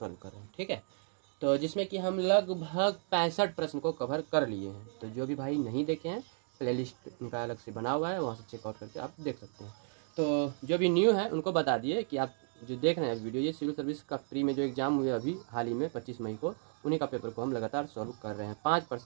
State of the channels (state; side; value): silent; left; 55 dB below the other